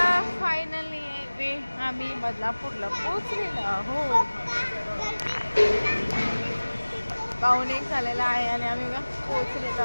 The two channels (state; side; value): inverted; both; correlation -1.00